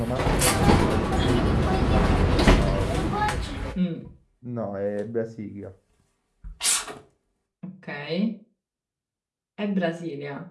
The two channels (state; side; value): identical; both; correlation 1.00